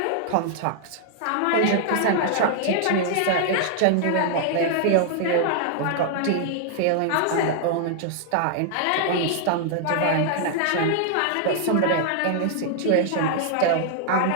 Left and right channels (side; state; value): both; different; correlation -0.01